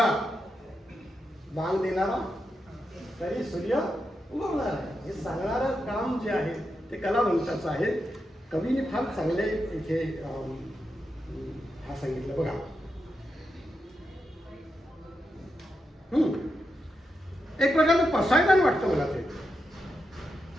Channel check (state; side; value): normal; both; correlation 0.86